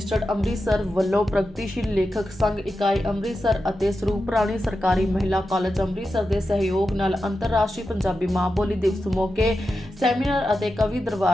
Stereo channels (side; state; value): both; normal; correlation 0.90